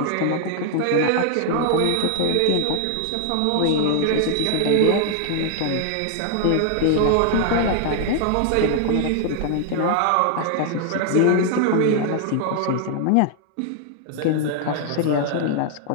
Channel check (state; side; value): different; both; correlation -0.01